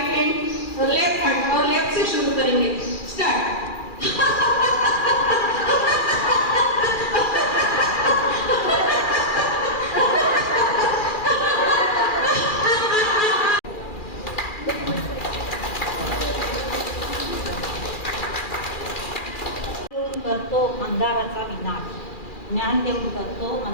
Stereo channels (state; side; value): late; right; 2.4 ms